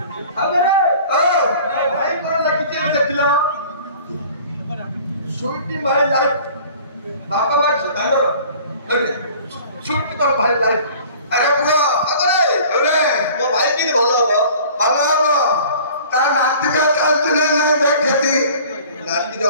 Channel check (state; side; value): inverted; both; correlation -0.47